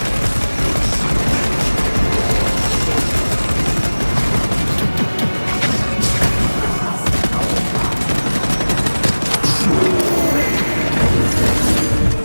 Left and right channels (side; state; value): both; inverted; correlation -1.00